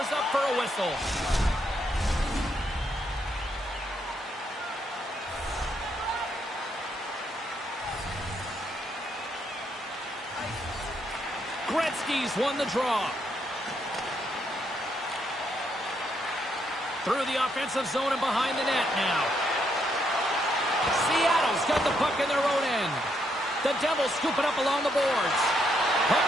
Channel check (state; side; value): normal; both; correlation 0.76